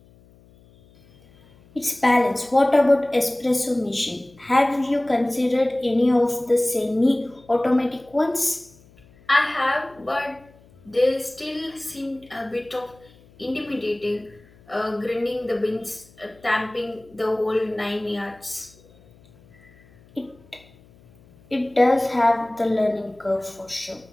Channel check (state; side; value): noise; left; hum, 27 dB below the sound